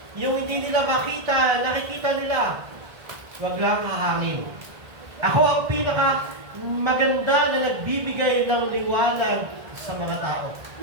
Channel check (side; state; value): left; late; 1.6 ms